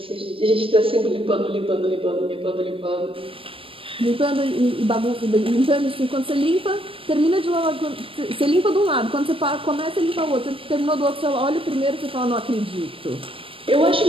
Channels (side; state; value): left; late; 0.26 ms